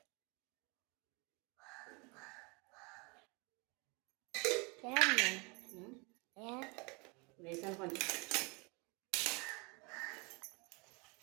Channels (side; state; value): left; quieter; 30.0 dB